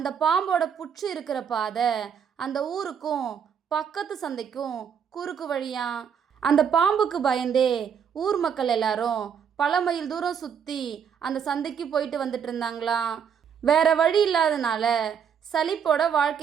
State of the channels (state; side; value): quieter; left; 7.5 dB